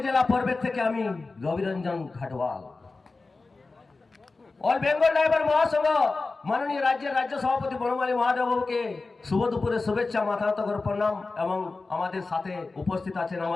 জেলা পর্বের থেকে আমি রবিরঞ্জন ঘাটওয়াল। অল বেঙ্গল ড্রাইভার মহাসংঘ মাননীয় রাজ্যের রাজ্য সভাপতি বনমালী মহাদেবকে শুভ দুপুরের শুভেচ্ছা, মাথা নত করে প্রণাম। এবং আমাদের সাথে উপস্থিত আছেন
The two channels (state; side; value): quieter; right; 3.7 dB